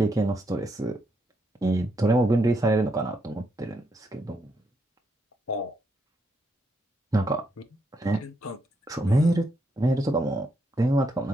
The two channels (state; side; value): normal; both; correlation 0.79